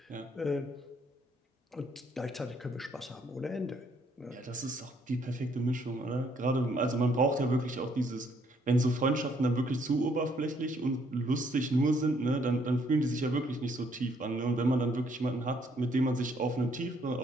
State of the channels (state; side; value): normal; both; correlation 0.67